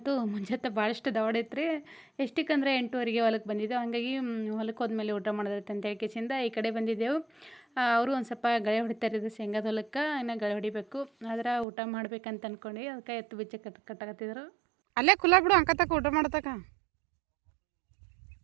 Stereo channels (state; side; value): drops out; left; at 11.7 s